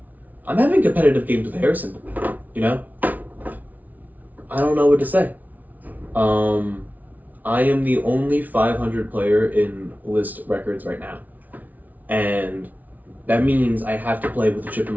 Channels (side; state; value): left; late; 0.077 ms